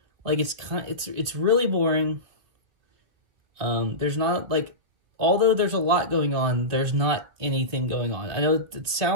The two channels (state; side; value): late; left; 3.1 ms